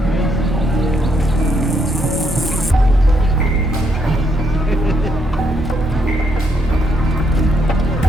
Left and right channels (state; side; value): normal; both; correlation 0.74